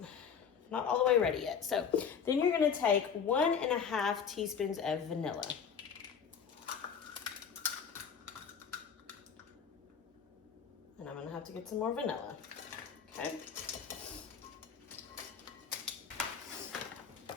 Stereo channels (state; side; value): quieter; right; 6.9 dB